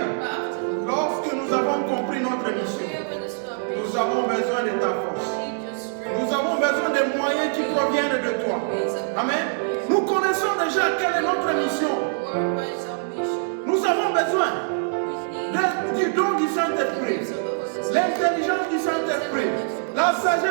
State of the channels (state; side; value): silent; left; digital silence